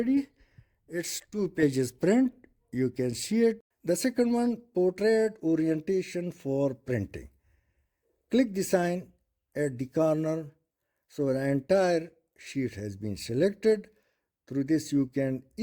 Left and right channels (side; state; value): both; identical; correlation 1.00